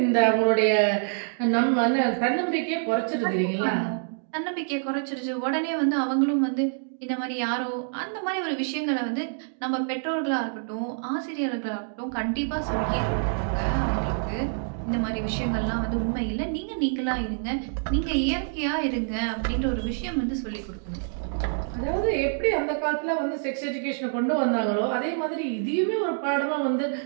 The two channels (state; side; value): silent; left; digital silence